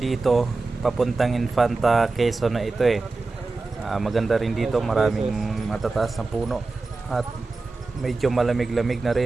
papuntang Infanta Quezon na ito maganda rin dito, maraming matataas na puno at medyo malamig-lamig na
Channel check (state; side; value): quieter; left; 3.6 dB